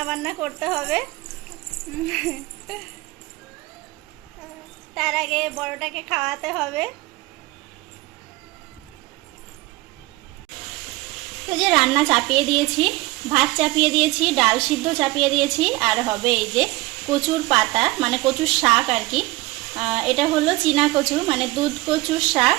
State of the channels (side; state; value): left; quieter; 20.5 dB